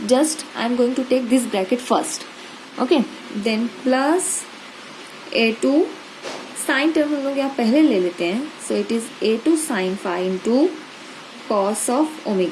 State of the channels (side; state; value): both; identical; correlation 1.00